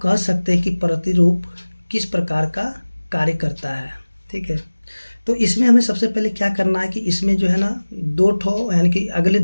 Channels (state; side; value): inverted; both; correlation -1.00